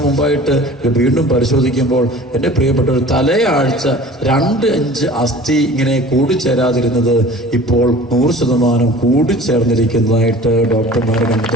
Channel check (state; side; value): normal; both; correlation 0.43